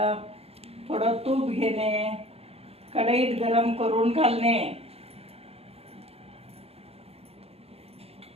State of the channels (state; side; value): late; left; 0.29 ms